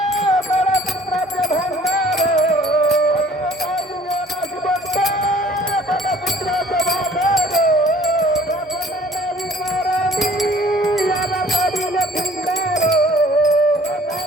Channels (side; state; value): both; normal; correlation 0.53